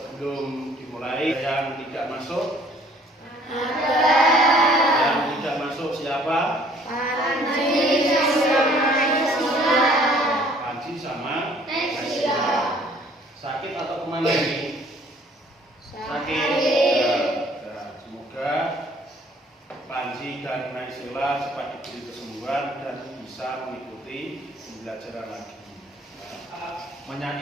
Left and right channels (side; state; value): both; normal; correlation 0.57